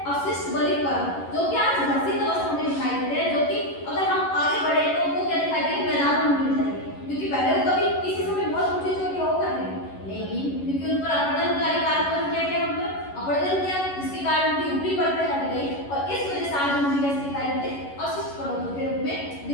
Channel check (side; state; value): right; late; 11 ms